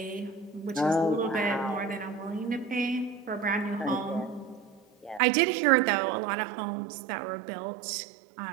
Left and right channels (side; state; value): left; drops out; at 5.2 s